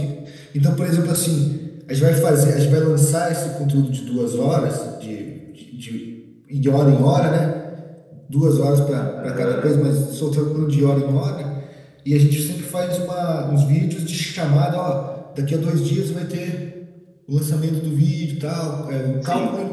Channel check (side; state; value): both; identical; correlation 1.00